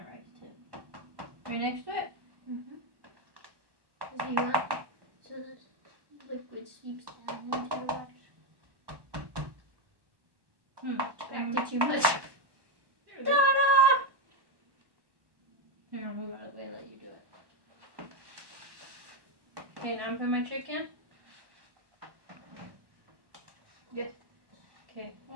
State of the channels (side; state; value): left; late; 1.2 ms